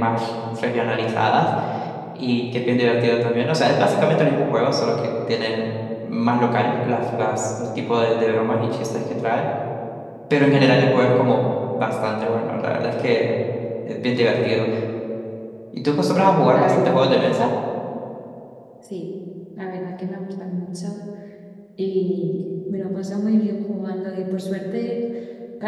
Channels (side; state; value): both; identical; correlation 1.00